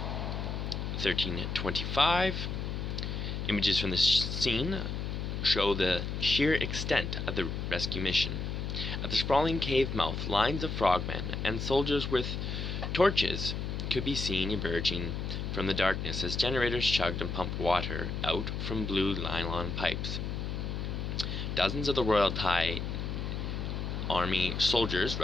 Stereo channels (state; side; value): noise; left; hum, 3 dB below the sound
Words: 13:25. Images from the scene show the sheer extent of the rescue mission. At the sprawling cave mouth, lines of frogmen and soldiers with torches could be seen emerging from the darkness as generators chugged and pumped water out from blue nylon pipes. Dozens of the Royal Thai Army soldiers